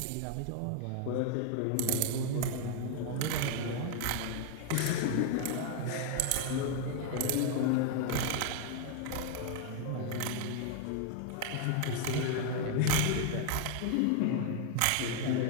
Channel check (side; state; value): both; different; correlation 0.00